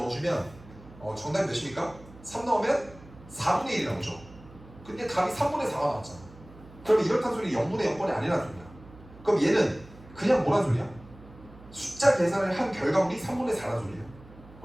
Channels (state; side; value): noise; right; hum, 20 dB below the sound